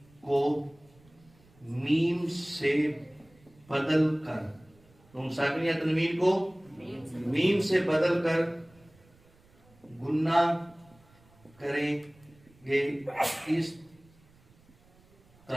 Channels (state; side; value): noise; right; rumble, 29 dB below the sound